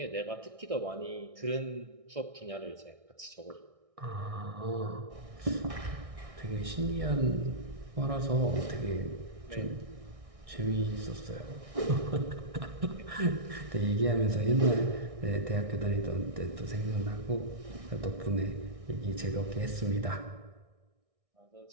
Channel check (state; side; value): late; left; 1.6 ms